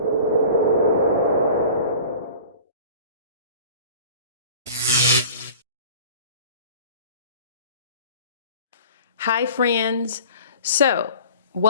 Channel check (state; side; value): inverted; both; correlation -0.43